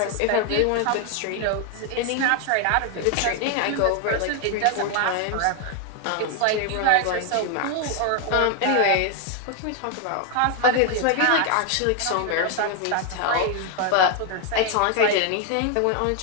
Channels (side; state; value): both; different; correlation 0.01